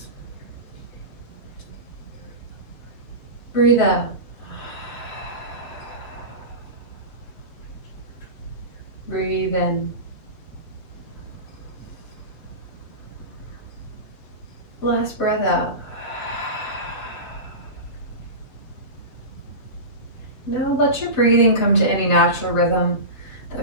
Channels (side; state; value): right; late; 7.4 ms